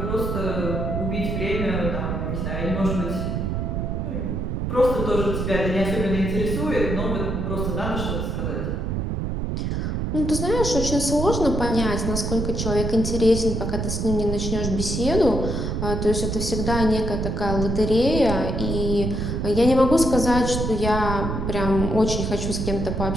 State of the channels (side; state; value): right; noise; rumble, 1 dB below the sound